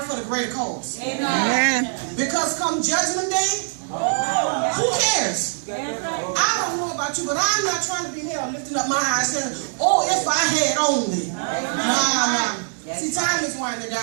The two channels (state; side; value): silent; left; 64 dB below the other